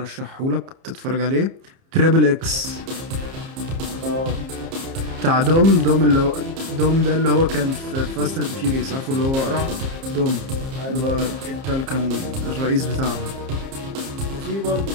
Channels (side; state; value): left; late; 30 ms